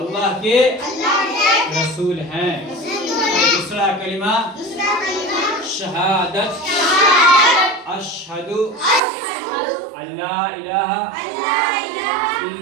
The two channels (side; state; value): left; drops out; at 9.0 s